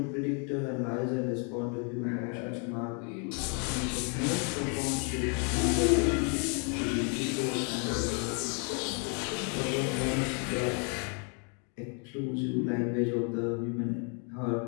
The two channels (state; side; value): quieter; right; 38.9 dB